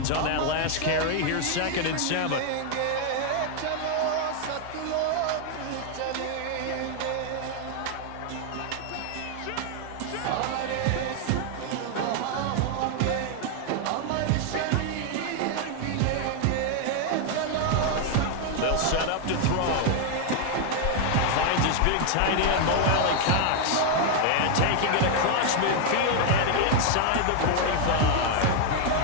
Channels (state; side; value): different; both; correlation 0.00